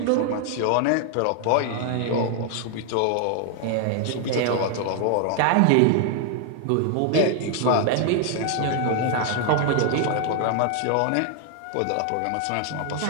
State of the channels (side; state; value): both; different; correlation 0.00